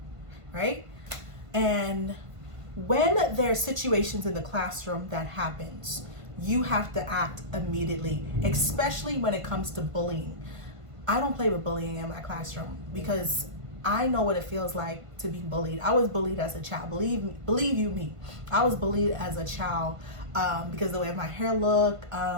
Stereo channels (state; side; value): late; left; 1.5 ms